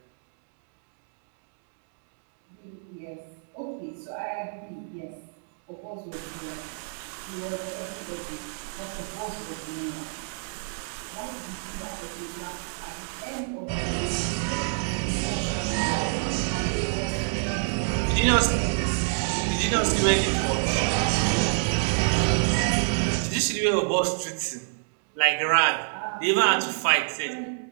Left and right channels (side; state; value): left; silent; digital silence